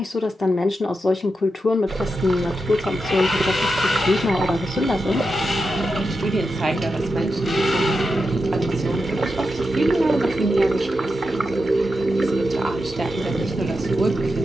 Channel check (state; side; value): normal; both; correlation 0.88